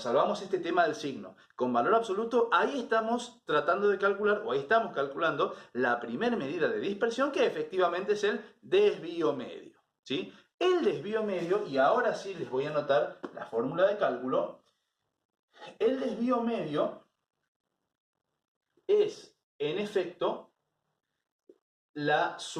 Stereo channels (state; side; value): identical; both; correlation 1.00